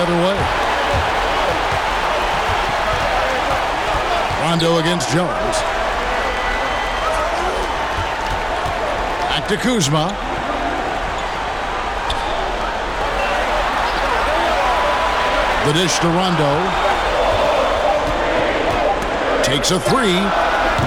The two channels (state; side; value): identical; both; correlation 1.00